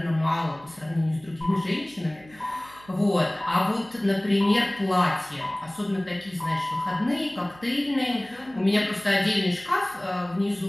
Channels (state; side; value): noise; right; hum, 24 dB below the sound